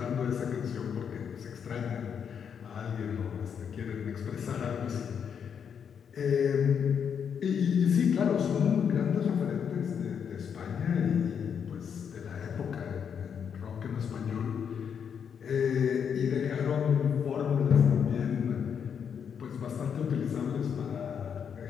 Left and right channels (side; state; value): right; quieter; 7.4 dB